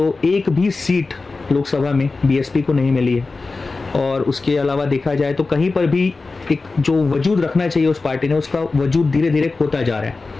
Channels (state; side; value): quieter; right; 3.8 dB